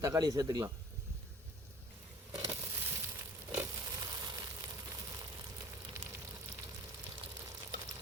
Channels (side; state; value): both; normal; correlation 0.48